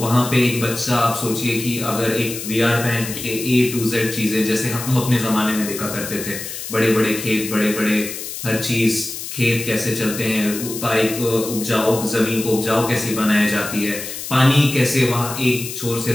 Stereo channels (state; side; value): noise; left; hiss, 8 dB below the sound